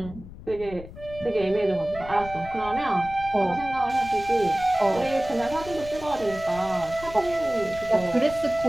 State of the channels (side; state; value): left; noise; rumble, 15 dB below the sound